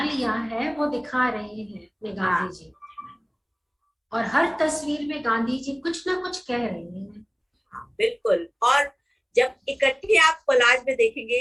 लिया है वो दिखा रहे हैं अपने गांधी जी, और हर तस्वीर में गांधी जी कुछ ना कुछ कह रहे हैं। बिल्कुल, और जब इकट्ठे आप कोलाज में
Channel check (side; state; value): both; identical; correlation 1.00